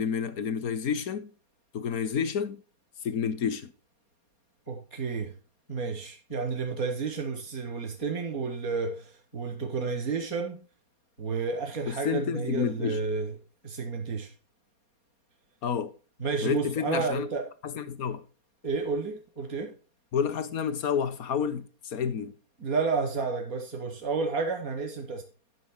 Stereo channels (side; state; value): right; late; 4.3 ms